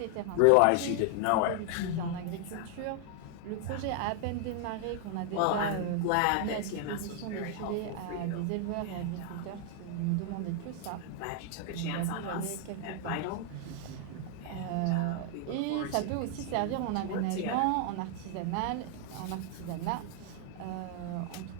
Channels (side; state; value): both; different; correlation 0.00